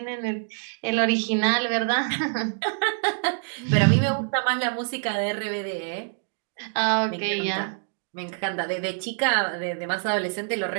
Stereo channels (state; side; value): silent; left; 61 dB below the other